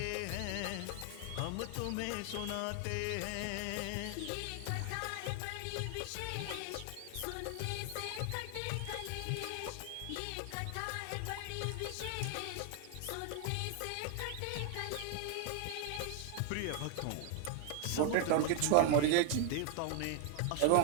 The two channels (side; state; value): both; different; correlation 0.00